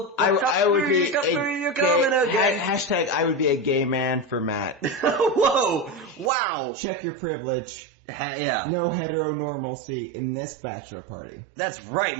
I would be you're coming again. Hashtag I would be a gay man for Matt. Whoa! Wow! Check your privilege. Yeah. No heteronormalcy in this bachelor party. That's right,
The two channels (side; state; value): left; drops out; at 6.3 s